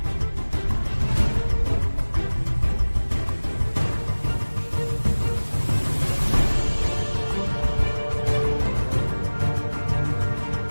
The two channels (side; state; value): both; inverted; correlation -1.00